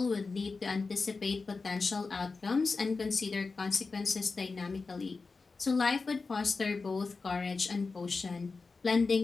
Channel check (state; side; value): quieter; right; 4.2 dB